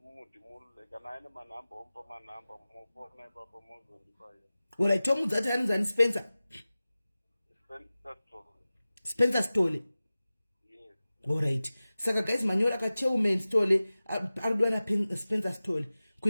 kana aine manhamba omupa manhamba mufona ipapo mozondipaya. Alright, tomuudza kuti anonzi ani Spencer? Spencer Stole. Yes. Alright. Saka guys manyora ka Chairman Stole arudwa na Spencer Stole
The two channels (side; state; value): both; inverted; correlation -0.97